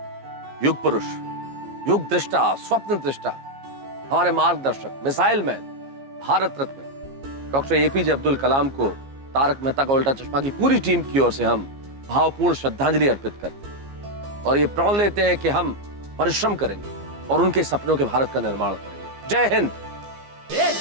युग पुरुष, युग दृष्टा, स्वप्न दृष्टा, हमारे मार्गदर्शक, missile man, Bharat Ratna doctor APJ Abdul Kalam को तारक मेहता का उल्टा चश्मा की पूरी टीम की ओर से हम भावपूर्ण श्रद्धांजलि अर्पित करते हैं और ये प्रण लेते हैं कि हम परिश्रम करेंगे और उनके सपनों के भारत का निर्माण करेंगे। जय Hind.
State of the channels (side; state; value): left; late; 15 ms